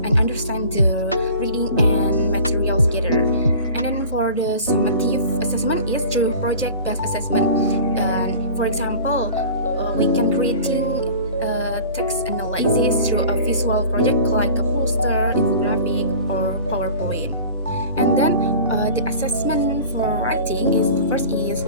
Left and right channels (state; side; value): inverted; both; correlation -0.41